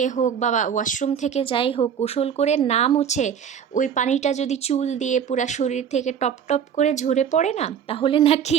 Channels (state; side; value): quieter; left; 8.1 dB